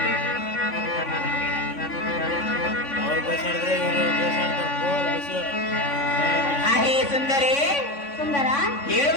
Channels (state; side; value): late; right; 3.5 ms